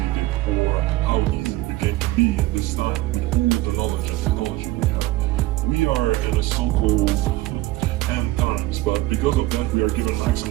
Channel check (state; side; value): quieter; left; 18.0 dB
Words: it or how easy it became to be at this time with all the knowledge and technology we have. We are in a so-called end times, but because of that we are given